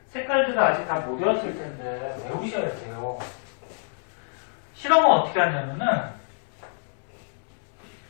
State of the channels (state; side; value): silent; right; digital silence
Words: 색깔들을 아직 다 못 외웠을 텐데 외우셔야 돼요. 실험은 어떻게 하냐면은